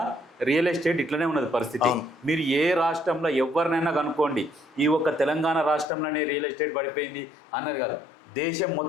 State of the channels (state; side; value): drops out; right; at 5.9 s